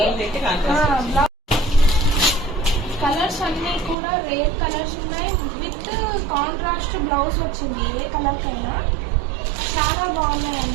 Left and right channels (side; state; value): left; drops out; at 4.0 s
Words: కలర్స్ అన్ని కూడా రేర్ కలర్స్ ఉన్నాయి, విత్ కాంట్రాస్ట్ బ్లౌజ్ వచ్చింది ఏ కలర్ కైనా. చాలా